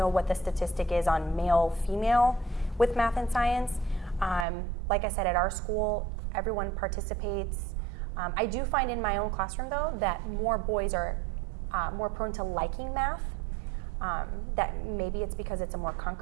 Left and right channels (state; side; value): drops out; left; at 4.5 s